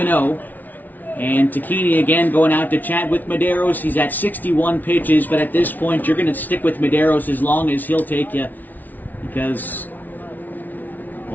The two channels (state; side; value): late; right; 0.081 ms